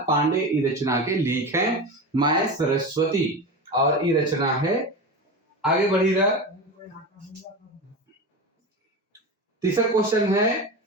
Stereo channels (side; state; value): both; normal; correlation 0.25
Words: पांडे ये रचना के लेख हैं माय सरस्वती और ये रचना है। आगे बढ़िएगा। तीसरा क्वेश्चन है